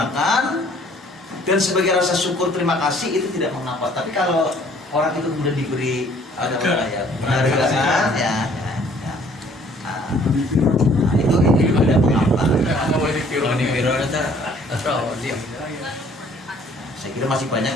dan sebagai rasa syukur terima kasih itu tidak mengapa. Tapi kalau orang itu kemudian diberi penghargaan ya. Nah, itu ada mengapa. Saya kira masih banyak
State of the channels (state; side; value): normal; both; correlation 0.58